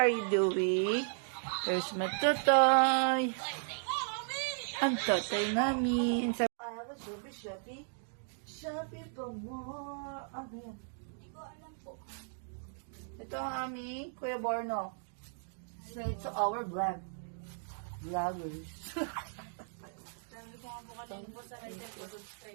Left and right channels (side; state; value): left; silent; digital silence